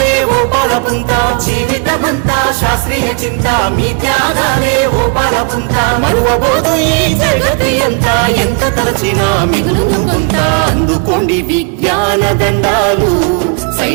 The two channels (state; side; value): quieter; left; 37.6 dB